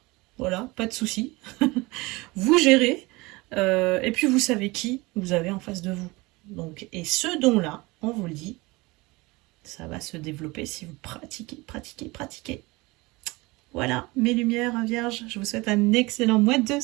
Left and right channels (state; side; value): quieter; left; 23.2 dB